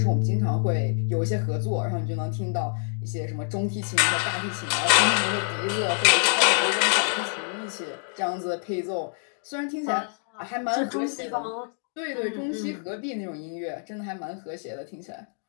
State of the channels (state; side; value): silent; right; digital silence